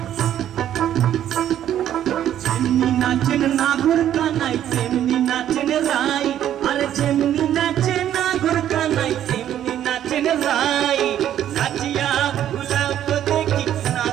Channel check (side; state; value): left; quieter; 11.1 dB